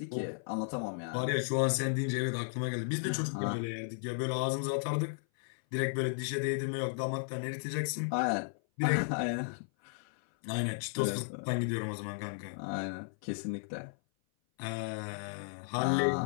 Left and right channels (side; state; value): right; silent; 55 dB below the other